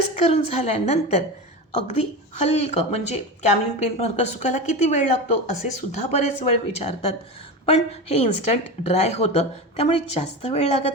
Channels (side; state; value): both; normal; correlation 0.23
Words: करून झाल्यानंतर अगदी हलकं, म्हणजे कॅमलिन पेंट मार्कर सुकायला किती वेळ लागतो असे सुद्धा बरेच वेळ विचारतात, पण हे इन्स्टंट ड्राय होतं त्यामुळे जास्त वेळ